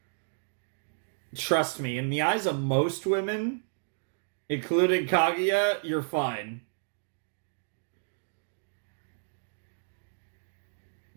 Trust me, in the eyes of most women, including Kaguya, you're fine.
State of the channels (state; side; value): silent; left; digital silence